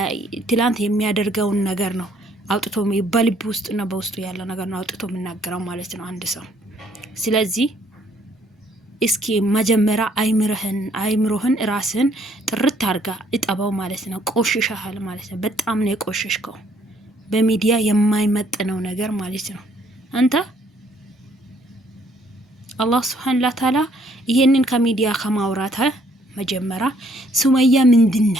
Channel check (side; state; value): both; normal; correlation 0.65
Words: ትላንት የሚያደርገውን ነገር ነው አውጥቶ በልቡ ውስጥና በውስጡ ያለው ነገር ነው አውጥቶ የሚናገረው ማለት ነው አንድ ሰው። ስለዚህ እስኪ መጀመሪያ አይምሮህን ራስን ጥርት አድርጋ እጠባው ማለት ነው። ቆሽሻል ማለት ነው። በጣም ነው የቆሽሽከው። በሚዲያ የማይመጥነው ነገር ማለት ነው። አንተ አላህ Subhanahu Wa Ta'ala ይሄንን ከሚዲያ ከማውራት መጀመሪያ ሱመያ